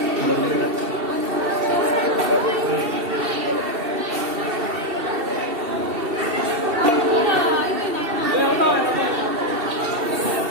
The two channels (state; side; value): late; left; 2.7 ms